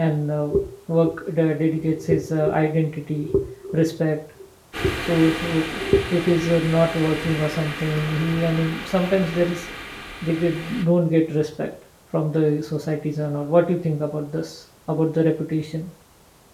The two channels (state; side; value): identical; both; correlation 1.00